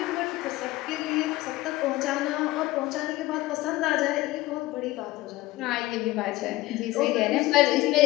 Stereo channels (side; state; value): right; quieter; 18.3 dB